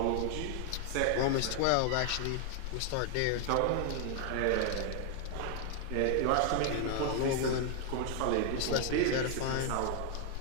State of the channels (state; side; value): different; both; correlation 0.00